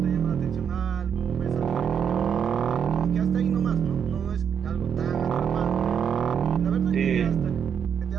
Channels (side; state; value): left; quieter; 7.7 dB